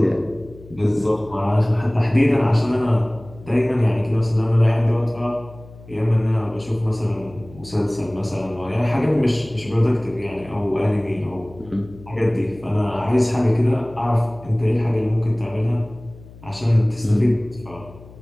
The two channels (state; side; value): noise; left; hum, 20 dB below the sound